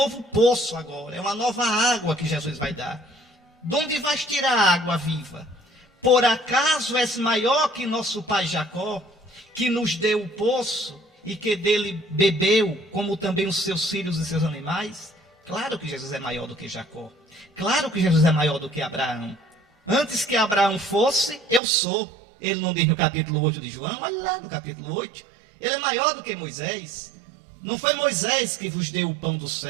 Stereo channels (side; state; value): left; drops out; at 21.6 s